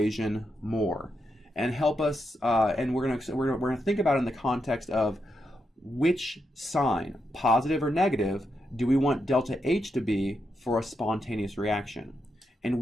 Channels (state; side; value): normal; both; correlation 0.84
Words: more and help us, and we're going to think about it in the context of which sign, positive or negative, do we want delta H to be for a spontaneous reaction? And